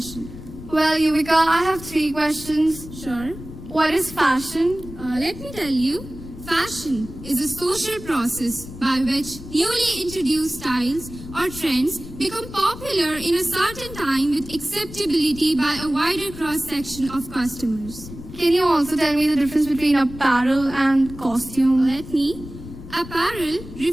Well, Yuvika, I have 3 questions. Sure. What is fashion? Let me tell you, fashion is a social process by which newly introduced styles or trends become popular in a certain time with acceptability by a wider cross-section of customers. Can you also tell me the difference between apparel and costume? Let me. Apparel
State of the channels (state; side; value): noise; left; rumble, 13 dB below the sound